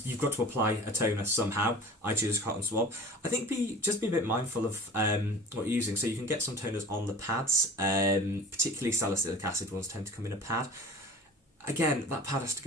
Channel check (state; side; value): normal; both; correlation 0.39